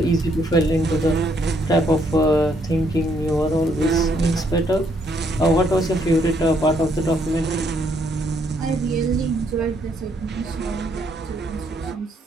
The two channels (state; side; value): normal; both; correlation 0.71